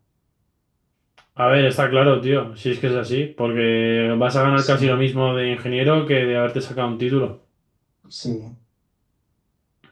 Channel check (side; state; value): both; identical; correlation 1.00